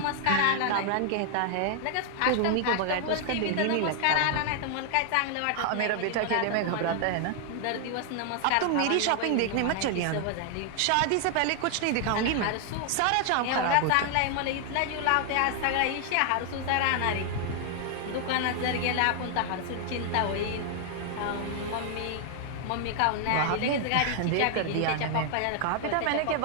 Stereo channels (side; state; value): both; different; correlation 0.00